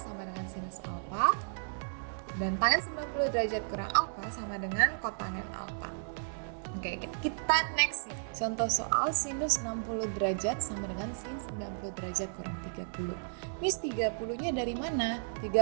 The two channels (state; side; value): silent; left; digital silence